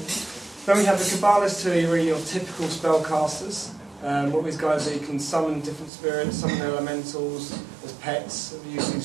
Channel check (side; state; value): left; drops out; at 5.9 s